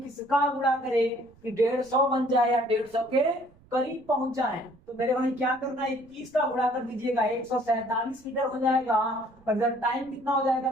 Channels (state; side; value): noise; right; rumble, 28 dB below the sound